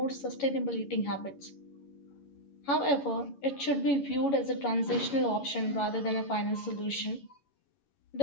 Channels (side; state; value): right; late; 11 ms